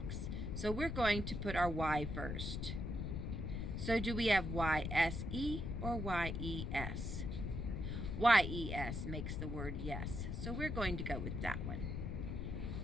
so we're going to put our Y first. So do we have Y-S-E or Y-E-S? Y-E-S makes the word yes, so we're going to go with that one.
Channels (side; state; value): left; noise; rumble, 3 dB below the sound